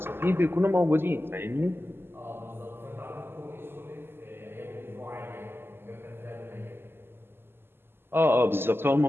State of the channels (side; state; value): left; late; 0.11 ms